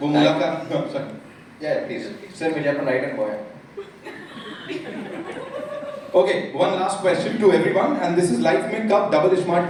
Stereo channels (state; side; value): identical; both; correlation 1.00